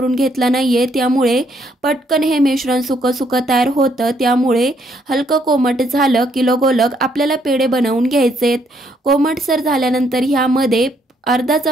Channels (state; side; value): normal; both; correlation 0.70